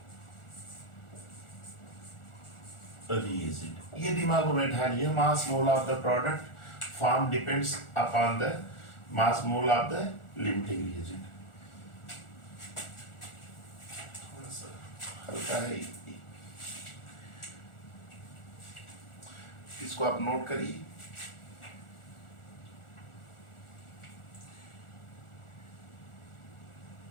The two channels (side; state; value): right; late; 1.4 ms